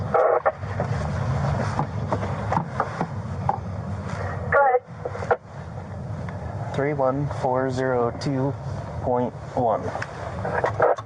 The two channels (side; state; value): both; identical; correlation 1.00